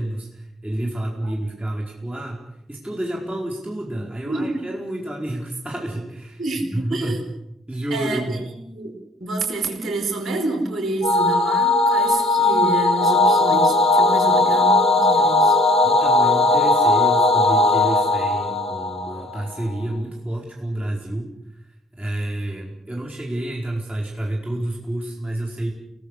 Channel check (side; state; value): both; normal; correlation 0.54